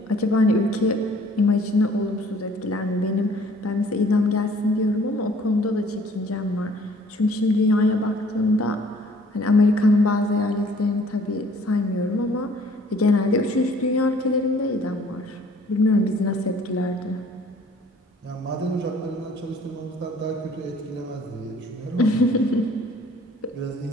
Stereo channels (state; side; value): normal; both; correlation 0.56